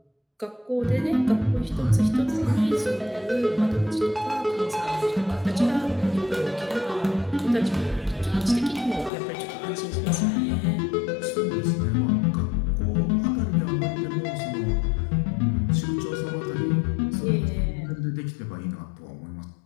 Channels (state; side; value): drops out; right; at 9.1 s